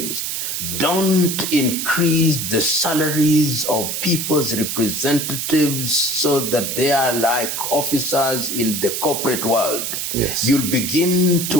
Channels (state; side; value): noise; right; hiss, 3 dB below the sound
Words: don't increase the salaries of people's representatives so that they are like officers in the corporate world. Yes. You'll begin